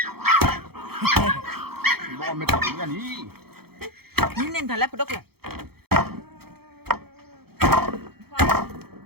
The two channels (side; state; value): left; late; 0.96 ms